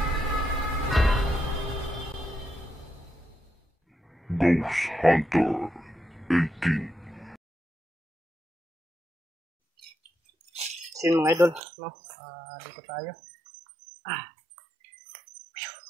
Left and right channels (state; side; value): drops out; left; at 11.6 s